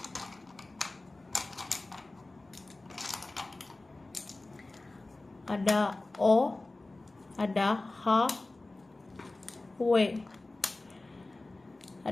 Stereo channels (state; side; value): quieter; right; 3.0 dB